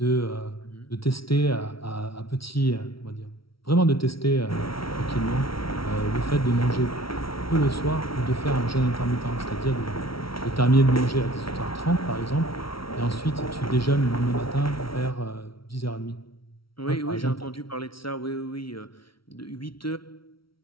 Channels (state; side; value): late; right; 0.75 ms